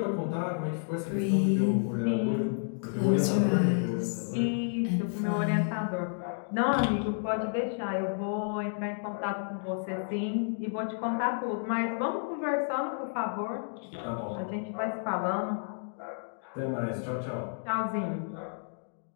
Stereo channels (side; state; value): right; silent; digital silence